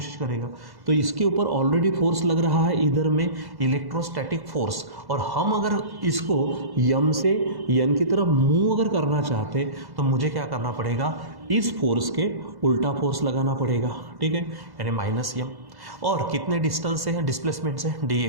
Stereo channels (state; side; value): late; left; 1.1 ms